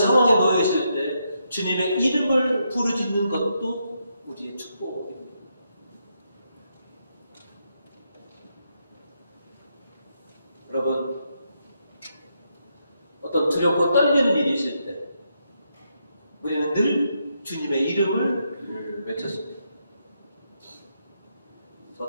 놓여 있을 때 주님의 이름을 부르짖는 것도 우리의 축복입니다. 여러분, 어떤 두렵고 떨리는 일이 있을 때 우리는 늘 주님의 이름을 외쳤습니다.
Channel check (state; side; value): inverted; both; correlation -0.80